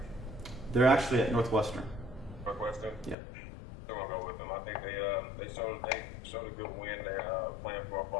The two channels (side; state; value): right; drops out; at 3.2 s